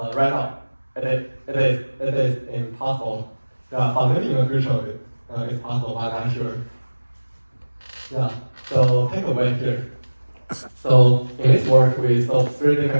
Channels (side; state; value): both; inverted; correlation -1.00